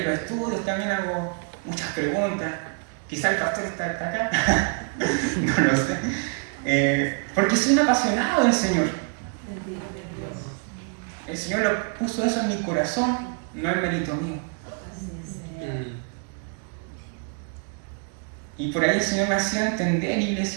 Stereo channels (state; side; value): quieter; left; 38.7 dB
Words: los estudios también hago muchas preguntas. Quizá el pastor está acá, no lo sé. Porque soy un apasionado del Señor. Bendito es Dios. El Señor lo puso eso en mi corazón, no es mérito mío. Así es, Señor. Y por ahí el Señor me hacía entender,